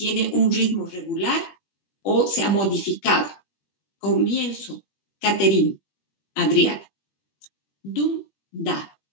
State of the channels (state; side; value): late; right; 20 ms